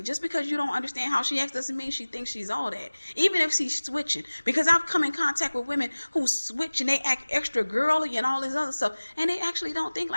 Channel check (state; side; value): inverted; both; correlation -1.00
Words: Just because you don't understand how she acts doesn't mean she thinks she's all that. Even if she's switching. Because I've come in contact with women who switch and they act extra girly and all this other stuff. And they actually don't think